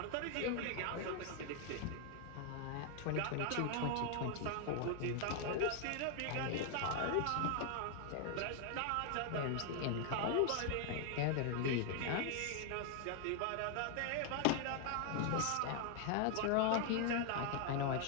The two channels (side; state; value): both; different; correlation 0.00